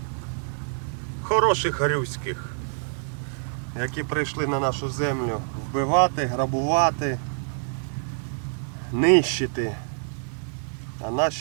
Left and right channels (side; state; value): left; silent; digital silence